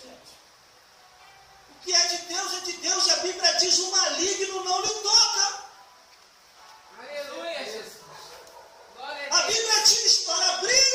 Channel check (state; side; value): identical; both; correlation 1.00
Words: O que é de Deus, e a Bíblia diz, o maligno não lhe toca. Aleluia, Jesus. Glória A a Deus. Bíblia diz para